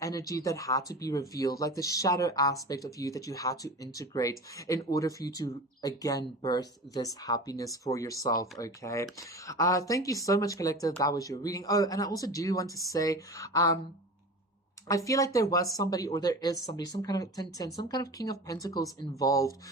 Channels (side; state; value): both; normal; correlation 0.33